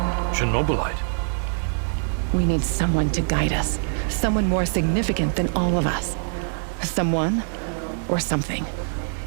Chernobylite. We need someone to guide us. Someone more significant than all of us. Someone or something.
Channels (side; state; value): left; silent; digital silence